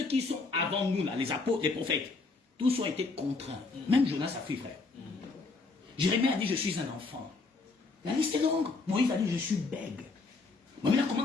qui sont avant nous, là, les apôtres, les prophètes, tous ont été contraints. Même Jonas a fui, frère. Jérémie a dit, je suis un enfant. La liste est longue. Moïse a dit, je suis bègue. Mais là, comment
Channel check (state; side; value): quieter; right; 3.9 dB